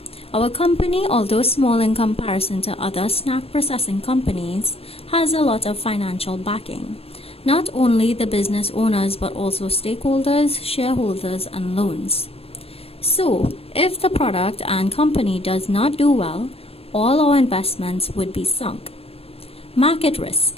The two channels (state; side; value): late; right; 0.28 ms